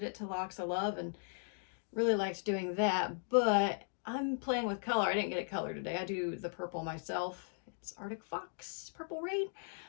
it to Locks of Love and really liked doing that, but I'm playing with color. I didn't get it colored today. I do the purple myself. It's Arctic Fox Purple Rain,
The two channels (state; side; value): silent; right; digital silence